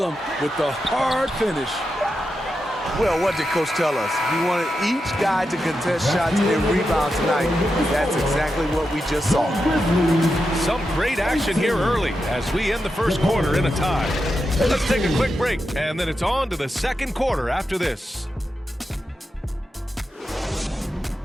with the hard finish. Well, what did Coach tell us? He wanted each guy to contest shots and rebound tonight. That's exactly what we just saw. Some great action here early as we end the first quarter in a tie. Let's take a quick break, and then it's on to the second quarter after this.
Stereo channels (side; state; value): both; normal; correlation 0.88